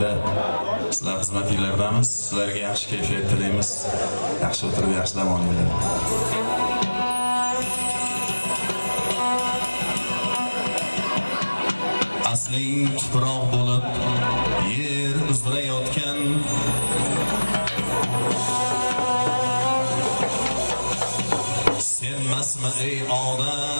sizlar xizmatinglardamiz. Sizlarga yaxshi kayfiyat tilaymiz. Yaxshi o'tirib yaxshi dam olinglar. Asling tuproq bo'lib yer uzra yotgan senmasmi ey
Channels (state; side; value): inverted; both; correlation -1.00